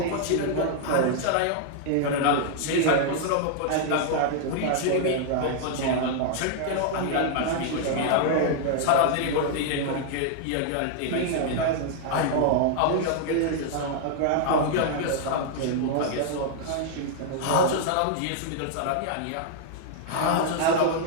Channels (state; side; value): different; both; correlation 0.00